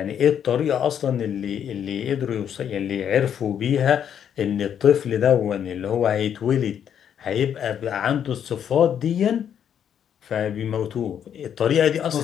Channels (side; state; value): right; quieter; 8.9 dB